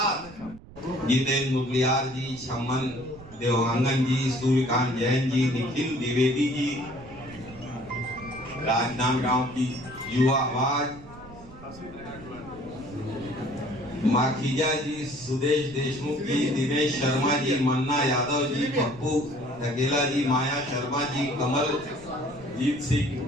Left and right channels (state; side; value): noise; right; rumble, 19 dB below the sound